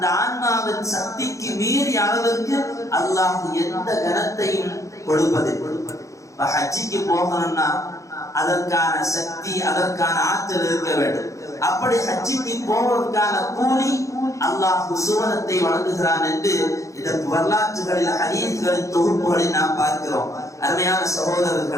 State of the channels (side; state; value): right; late; 0.15 ms